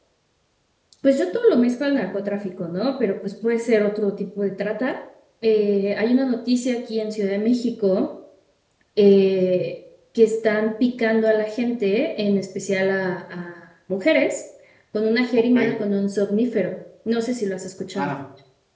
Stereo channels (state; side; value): identical; both; correlation 1.00